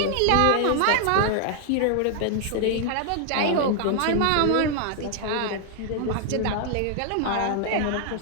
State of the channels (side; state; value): both; different; correlation 0.00